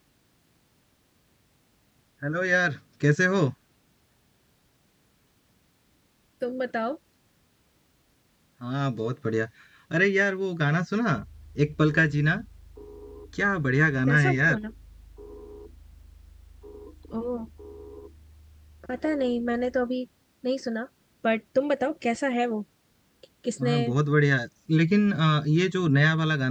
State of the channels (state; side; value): identical; both; correlation 1.00